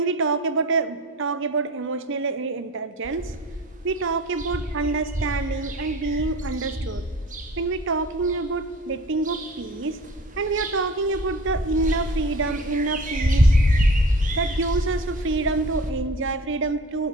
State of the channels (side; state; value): both; normal; correlation 0.38